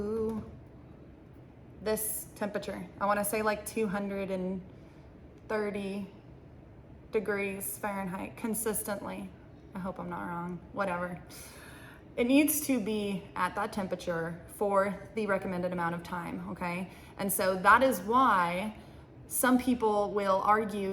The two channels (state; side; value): identical; both; correlation 1.00